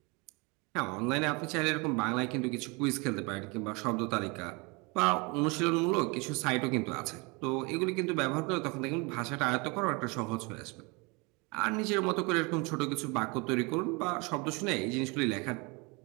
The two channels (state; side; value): quieter; left; 28.4 dB